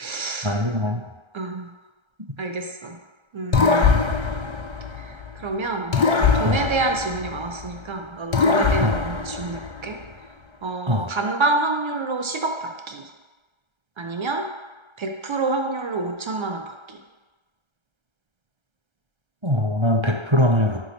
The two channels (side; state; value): left; late; 1.3 ms